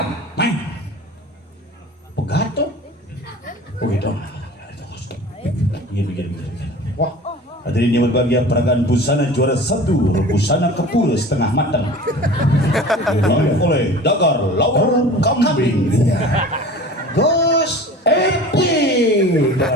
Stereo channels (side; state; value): both; normal; correlation 0.40